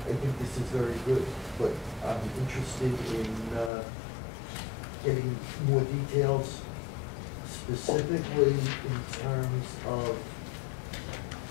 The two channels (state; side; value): drops out; right; at 3.7 s